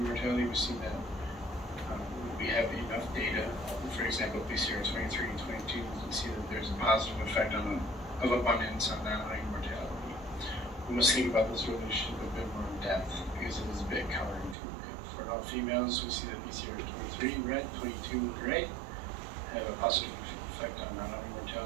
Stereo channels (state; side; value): drops out; left; at 14.6 s